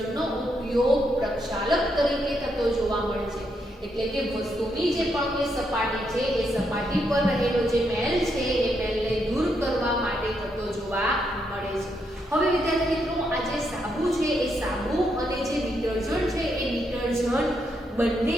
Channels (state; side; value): normal; both; correlation 0.79